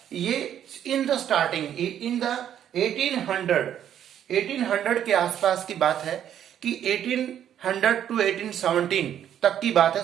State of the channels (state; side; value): quieter; left; 10.1 dB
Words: ये in the starting in the 1800 के आसपास की बात है कि 1800 टू 1817 तक की बात है,